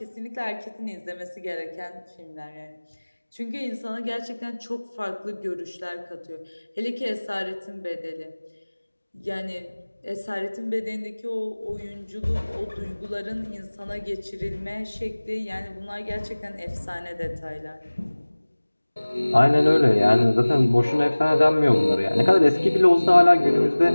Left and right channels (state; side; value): inverted; both; correlation -1.00